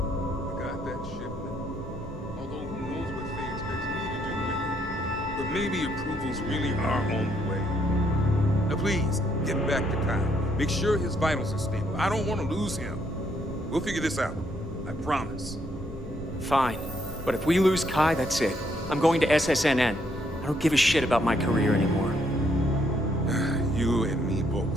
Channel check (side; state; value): both; normal; correlation 0.72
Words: I got that shipment. Although who knows what Faye expects me to do with it. But maybe approvals really are on the way. Now please, get back to Kyle. Make sure his vitals are stable. I don't want to lose him. We'll figure this out. I promise. Fine. But if we lose Kai, that's it. I'm going to SSNN. I don't give a shit about my career anymore. You and me